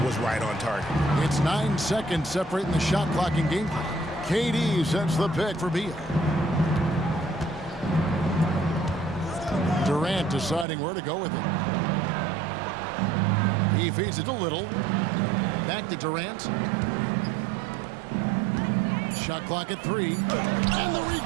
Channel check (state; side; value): drops out; left; at 10.7 s